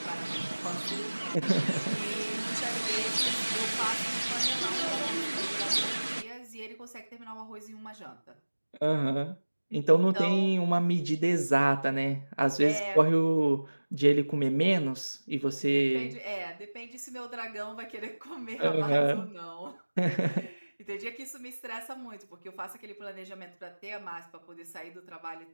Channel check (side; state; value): both; inverted; correlation -1.00